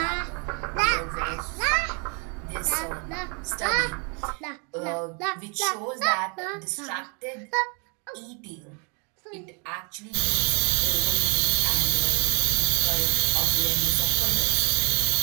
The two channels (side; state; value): left; quieter; 36.2 dB